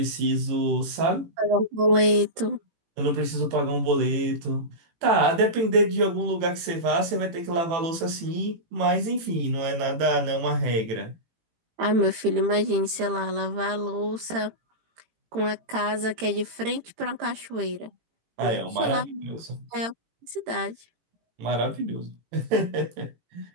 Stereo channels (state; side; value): late; left; 18 ms